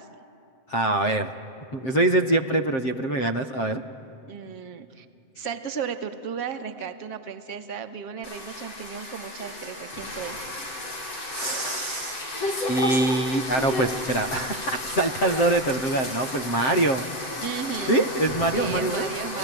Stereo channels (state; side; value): late; right; 7.6 ms